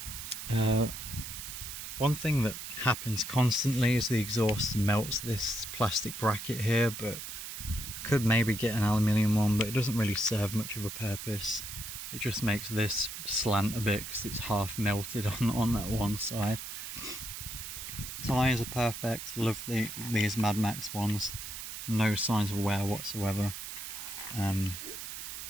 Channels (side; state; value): right; noise; hiss, 8 dB below the sound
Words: One thing that happens constantly is the exhaust melts this plastic bracket here, but I could maybe get an aluminium one, but it doesn't really serve much of a purpose. It just makes this slant a bit because it's half melted on that one side. Tyres are perfect, love these Mad Max ones, no signs of wear whatsoever. Oh